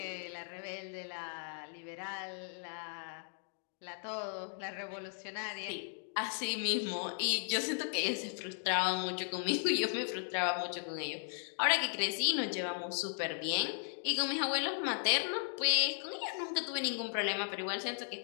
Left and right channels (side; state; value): right; silent; 53 dB below the other